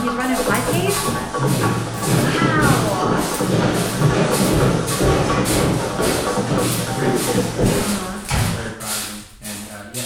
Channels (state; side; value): identical; both; correlation 1.00